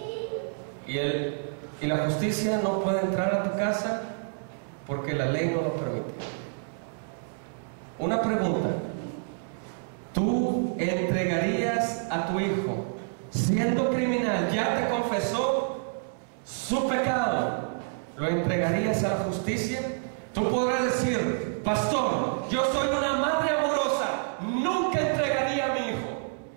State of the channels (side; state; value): left; silent; 59 dB below the other